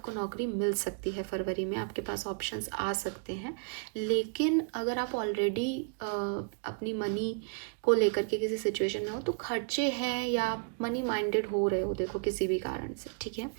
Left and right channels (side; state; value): left; quieter; 38.0 dB